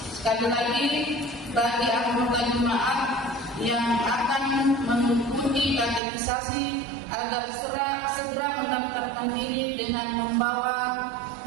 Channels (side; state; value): left; drops out; at 6.0 s